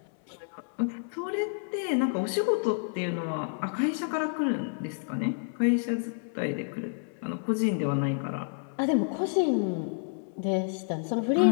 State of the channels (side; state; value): right; silent; 58 dB below the other